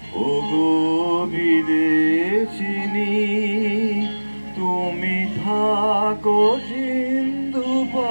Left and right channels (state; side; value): inverted; both; correlation -1.00